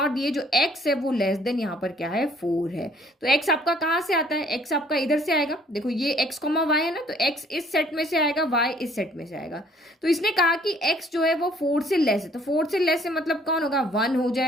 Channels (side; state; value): both; normal; correlation 0.60